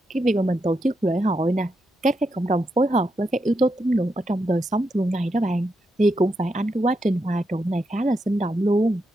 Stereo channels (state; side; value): normal; both; correlation 0.83